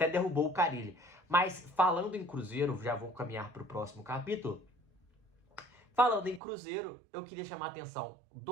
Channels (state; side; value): drops out; left; at 6.4 s